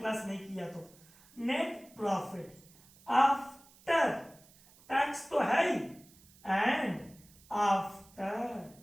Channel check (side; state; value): right; noise; hiss, 26 dB below the sound